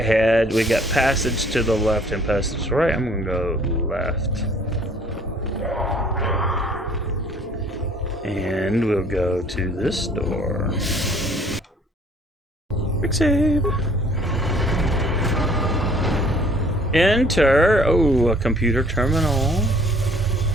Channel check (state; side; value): normal; both; correlation 0.57